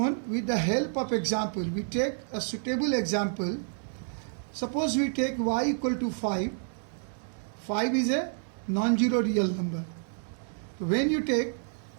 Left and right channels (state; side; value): silent; left; digital silence